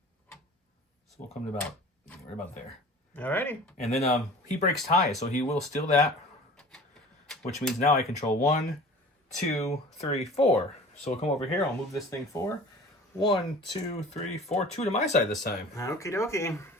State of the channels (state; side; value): normal; both; correlation 0.43